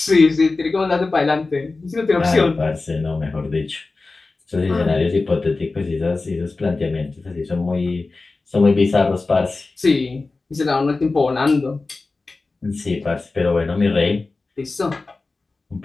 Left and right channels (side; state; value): right; quieter; 3.6 dB